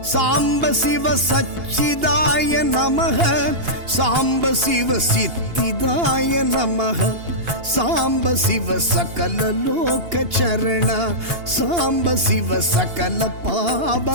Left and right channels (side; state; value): left; late; 2.8 ms